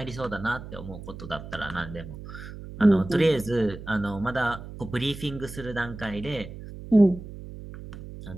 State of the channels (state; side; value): noise; right; hum, 12 dB below the sound